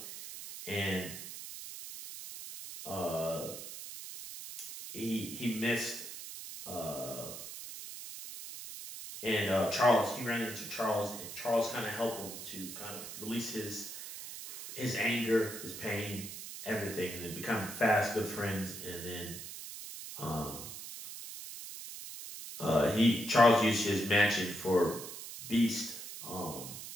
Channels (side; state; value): right; noise; hiss, 10 dB below the sound